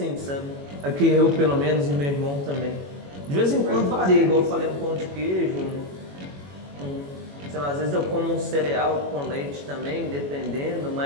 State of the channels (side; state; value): left; late; 21 ms